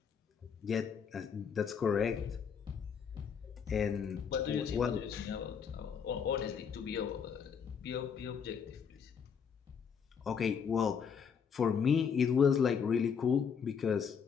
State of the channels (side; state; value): right; quieter; 6.8 dB